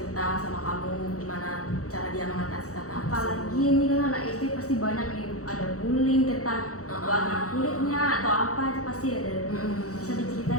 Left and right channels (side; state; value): right; late; 0.65 ms